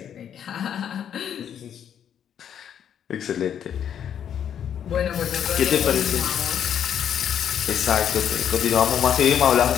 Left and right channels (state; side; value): quieter; right; 9.0 dB